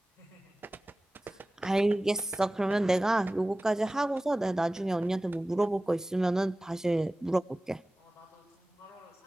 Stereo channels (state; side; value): normal; both; correlation 0.97